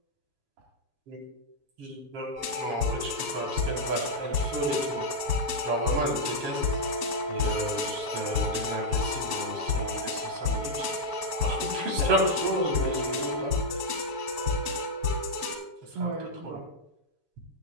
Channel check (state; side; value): late; left; 7.1 ms